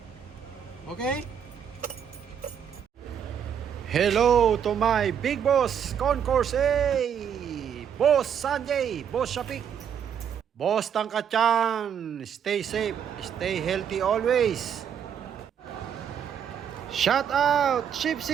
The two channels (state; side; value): quieter; left; 8.3 dB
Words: Okay. Hello to my big boss, Concourse A, Boss Sanjay, Boss Shapik, Boss Tangkachan. Stay safe, stay healthy always. Shout out